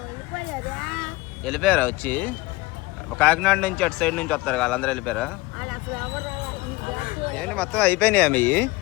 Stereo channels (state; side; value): quieter; right; 21.2 dB